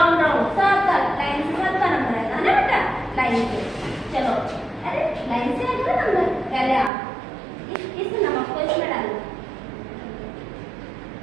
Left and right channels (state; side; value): drops out; left; at 6.9 s